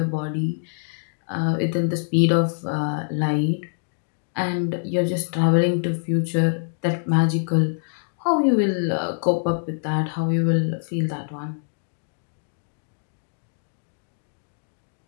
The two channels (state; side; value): silent; right; digital silence